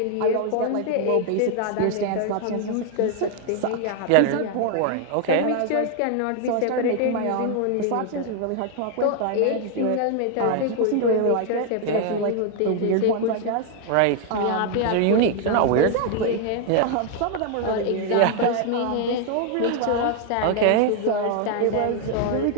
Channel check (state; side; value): different; both; correlation 0.00